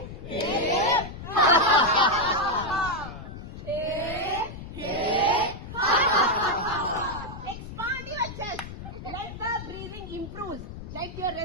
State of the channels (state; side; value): noise; left; rumble, 11 dB below the sound